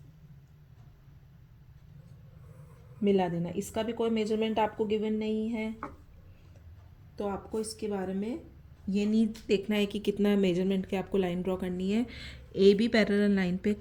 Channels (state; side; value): identical; both; correlation 1.00